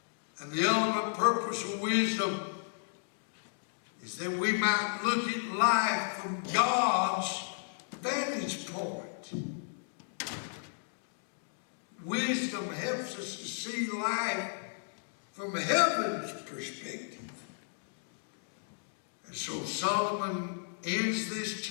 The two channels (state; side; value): silent; right; digital silence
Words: And the ultimate purpose of wisdom is that we might look at life from God's vantage point. Wisdom helps us to see life from heaven's perspective. And so Solomon ends this